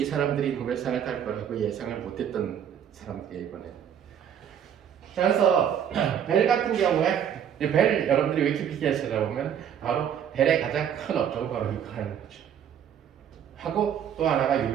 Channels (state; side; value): quieter; left; 9.0 dB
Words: 사람들이 노벨상을 탈 거라고 예상을 못했던 사람들이에요 이번에. 자, 그래서 벨 같은 경우에 벨 여러분들이 위키피디아에 찾아보면 바로 벨의 가장 큰 업적은 바로 이거 하는 거죠. 하고 또 하나가